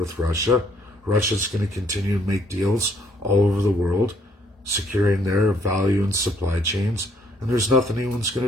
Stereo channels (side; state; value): both; normal; correlation 0.66